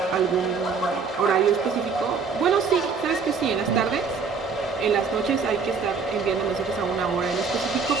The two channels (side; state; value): left; quieter; 5.3 dB